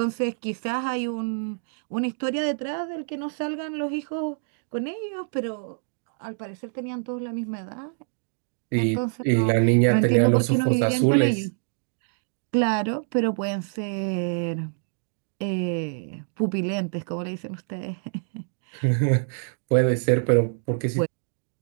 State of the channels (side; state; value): left; silent; digital silence